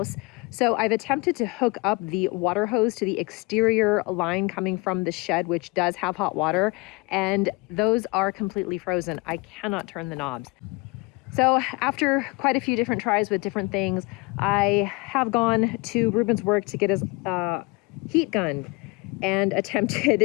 So I've attempted to hook up the water hose to the exterior line coming from the shed, which does have hot water, and those are completely frozen. I cannot turn the knobs. So after quite a few different tries with different things, I have gone to Ruben's work to get his heat gun and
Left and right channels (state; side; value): quieter; right; 26.4 dB